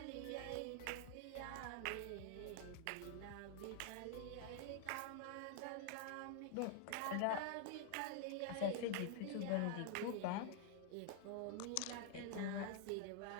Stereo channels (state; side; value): different; both; correlation 0.00